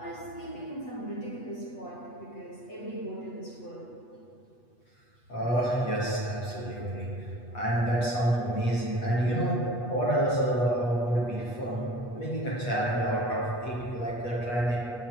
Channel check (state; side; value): late; right; 8.3 ms